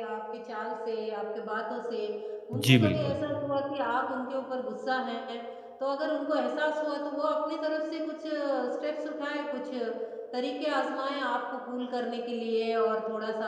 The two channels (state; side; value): identical; both; correlation 1.00